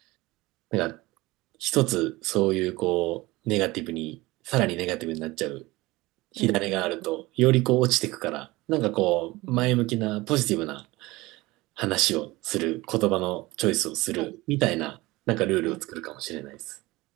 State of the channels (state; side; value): quieter; left; 20.7 dB